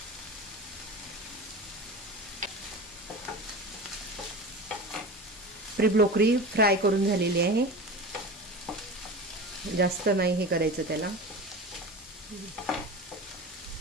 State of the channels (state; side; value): normal; both; correlation 0.31